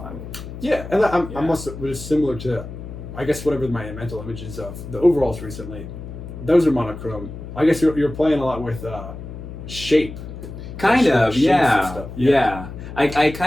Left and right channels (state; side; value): noise; left; hum, 11 dB below the sound